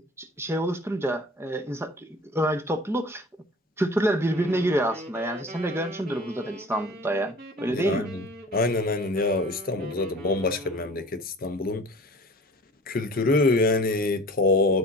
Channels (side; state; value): both; normal; correlation 0.44